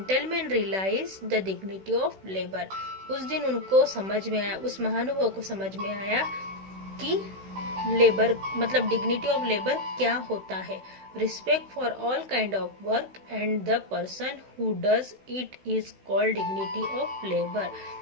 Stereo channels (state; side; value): late; left; 16 ms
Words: realise the dignity of labour. उस दिन उनको समझ में आया, उस महानुभाव को समझ में आया कि लेबर मतलब डिग्निटी ऑफ लेबर क्या होता है। Respect for all kind of work and the person who does it is called dignity of labour.